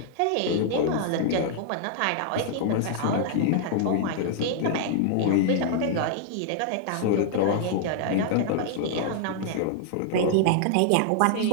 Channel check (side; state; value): both; different; correlation -0.01